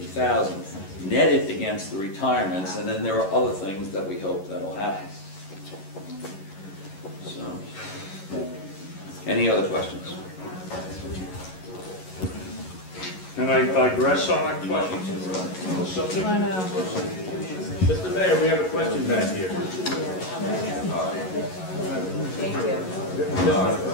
net it against the retirements, and then there are other things that we hope that'll happen. So, any other questions? and I digress on that question. Subject? Mr. Mayor, we have a question back here.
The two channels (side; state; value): right; late; 11 ms